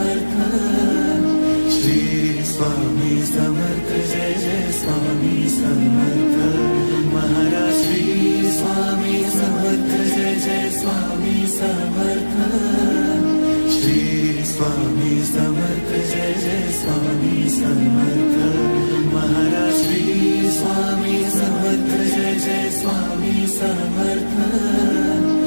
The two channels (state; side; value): inverted; both; correlation -1.00